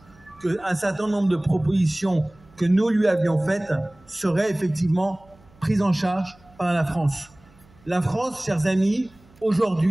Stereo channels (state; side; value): noise; right; hum, 28 dB below the sound